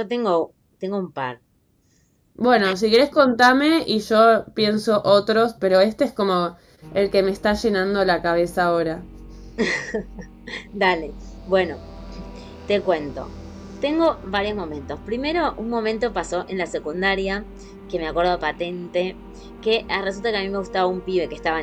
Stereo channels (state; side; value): identical; both; correlation 1.00